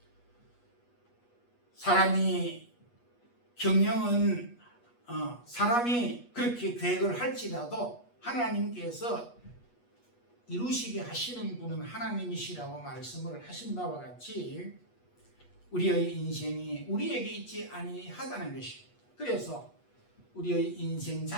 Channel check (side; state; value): right; late; 8.3 ms